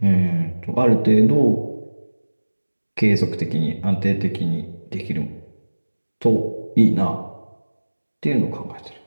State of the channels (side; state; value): both; inverted; correlation -1.00